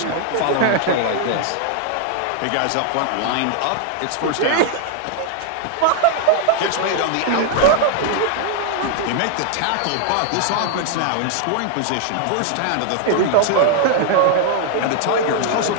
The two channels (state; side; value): different; both; correlation 0.00